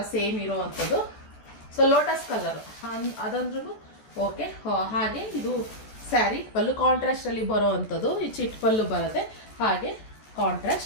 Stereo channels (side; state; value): right; late; 14 ms